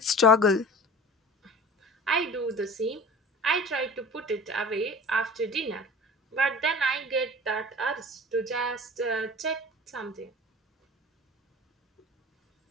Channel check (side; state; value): both; normal; correlation 0.40